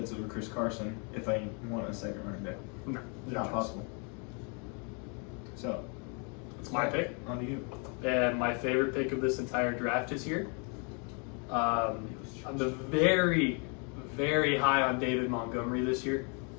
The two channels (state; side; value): quieter; right; 36.5 dB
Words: over Chris Carson if I want a second running back. No. Not possible. So, It's my pick. on to you. And my favorite pick of this entire draft is here. I'm very, very high on David Montgomery this year.